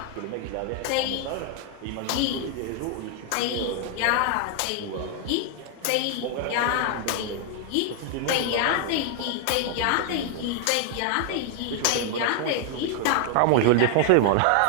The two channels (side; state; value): both; different; correlation 0.00